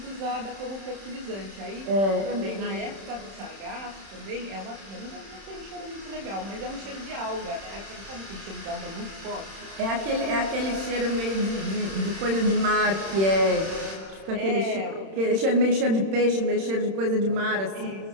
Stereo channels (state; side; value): late; left; 31 ms